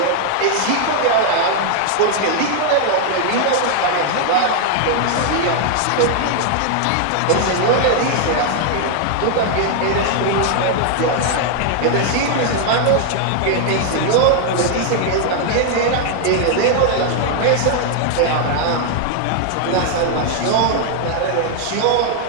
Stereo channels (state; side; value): different; both; correlation 0.00